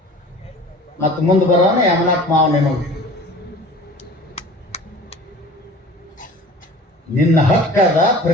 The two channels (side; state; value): both; normal; correlation 0.43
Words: ಮತ್ತು ಮುಂದೆ ಬರೋಣ ಯಮನಾಥ್ ಮಾವ ನಿಮಗೆ ನಿನ್ನ ಹಕ್ಕದ